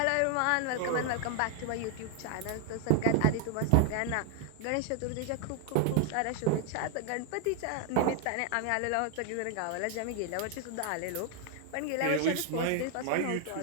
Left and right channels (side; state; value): both; different; correlation 0.00